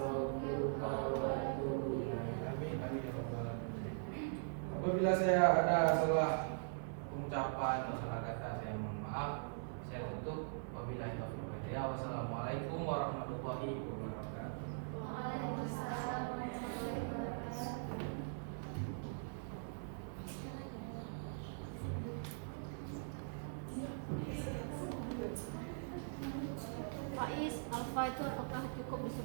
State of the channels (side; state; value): left; silent; digital silence